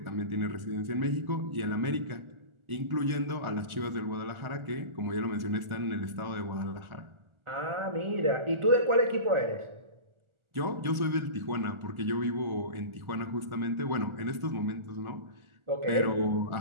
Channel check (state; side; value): late; left; 1.4 ms